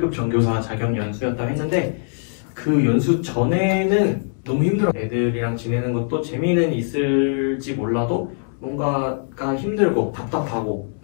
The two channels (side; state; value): right; silent; 64 dB below the other